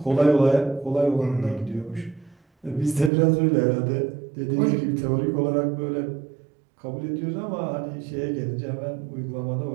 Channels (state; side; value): drops out; left; at 3.1 s